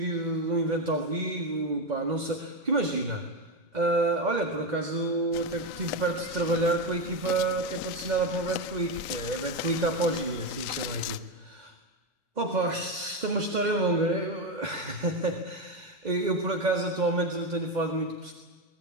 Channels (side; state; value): left; late; 2.1 ms